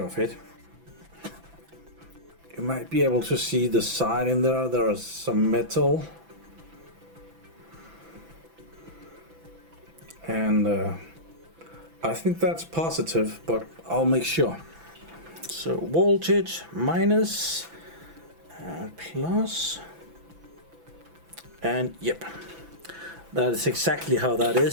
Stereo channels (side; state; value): left; late; 6.0 ms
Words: of it. You might be able to see the side in there. There is some metal. And I think that's positive, but I'll make sure. So voltage minus, plus, and yep, that is exactly how that